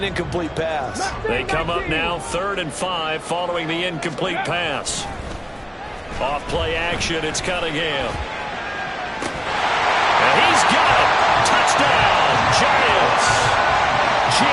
incomplete pass. They come up now 3rd and 5 following the incomplete pass. Off play action, it's Cunningham. And he's got it. Touchdown, Giants.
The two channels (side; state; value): both; identical; correlation 1.00